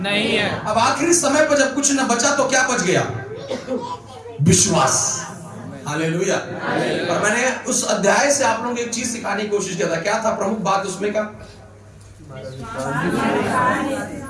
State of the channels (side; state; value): both; identical; correlation 1.00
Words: है। अब आखिरी समय पर जब कुछ न बचा तो क्या बच गया? विश्वास। हालेलुया। और मैंने उस अध्याय से आप लोगों को एक चीज सिखाने की कोशिश किया था। क्या था प्रमुख बात उसमें का?